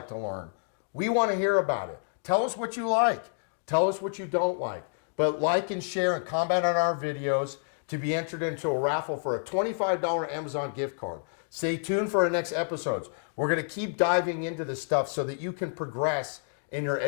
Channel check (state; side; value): silent; right; digital silence